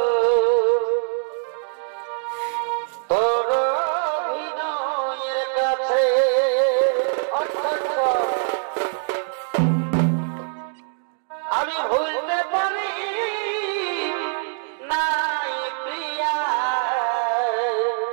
তোর অভিনয়ের কাছে আমি ভুলতে পারি নাই প্রিয়া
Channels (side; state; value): left; silent; digital silence